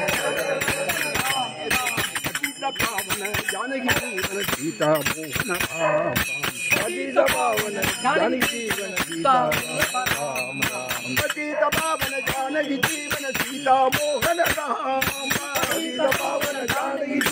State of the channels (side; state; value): both; identical; correlation 1.00